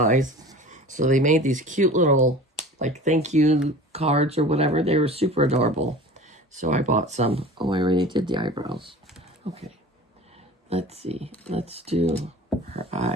So they made these cute little, like, thank you cards or whatever. They were super adorable. So I bought some. Oh, I already did the eyebrows. Okay. Let's see. Let's do her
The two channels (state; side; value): normal; both; correlation 0.39